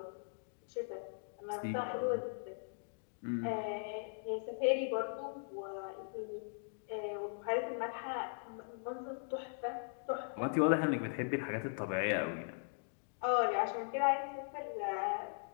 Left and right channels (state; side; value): silent; right; digital silence